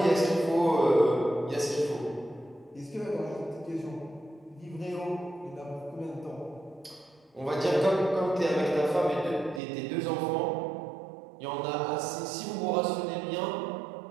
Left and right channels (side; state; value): left; drops out; at 9.6 s